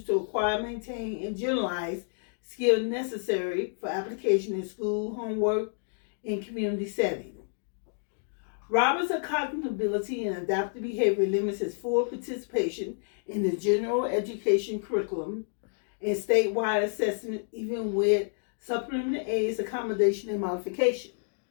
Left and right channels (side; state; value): right; silent; digital silence